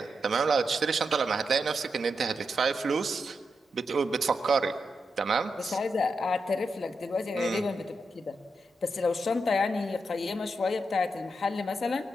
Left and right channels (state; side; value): normal; both; correlation 0.85